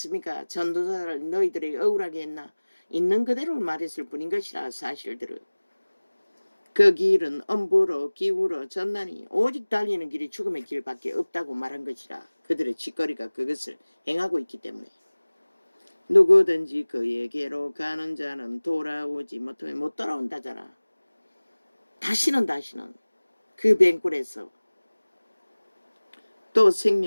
전도자를 너희들에게 억울하게 했나? 있는 그대로 말했을 뿐인 것이라 사실들을. 그 길은 엄부로 기울어 졌나니 오직 달리는 길이 죽음의 길밖에 없다고 말한 것이라. 그들의 짓거리가 그것을 행하고 있기 때문에. 누구든지 그에게로 가는 자는 돌아오지 못하면 못 돌아온다잖아. 다시는 그 뱅굴에서 또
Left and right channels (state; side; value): inverted; both; correlation -1.00